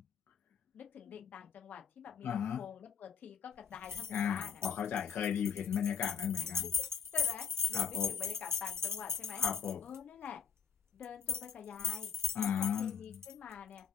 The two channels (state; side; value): quieter; right; 6.7 dB